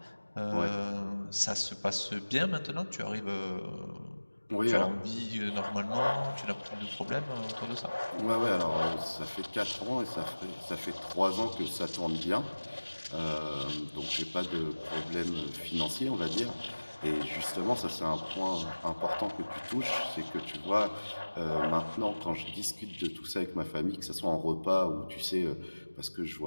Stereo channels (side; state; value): both; inverted; correlation -1.00